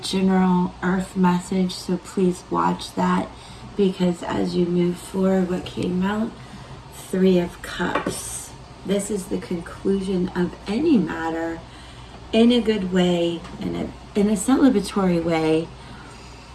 earth message, so please watch that, because as you move forward, what came out? Three of Cups. This is the conclusion of any matter in a good way, in a celebratory way.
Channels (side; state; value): both; identical; correlation 1.00